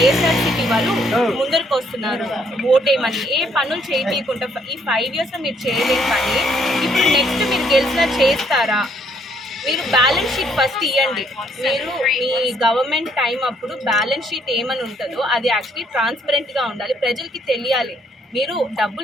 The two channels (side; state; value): both; normal; correlation 0.68